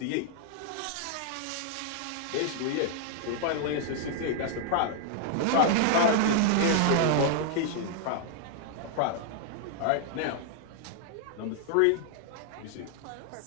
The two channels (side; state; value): both; different; correlation -0.01